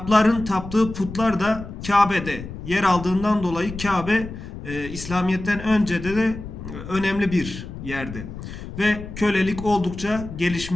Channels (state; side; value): noise; left; rumble, 11 dB below the sound